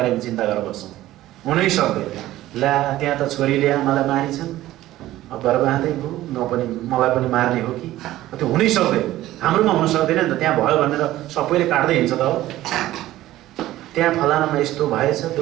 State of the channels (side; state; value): left; quieter; 15.2 dB